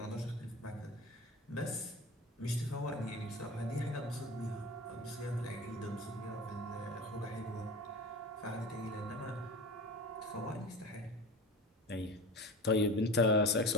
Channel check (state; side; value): normal; both; correlation 0.32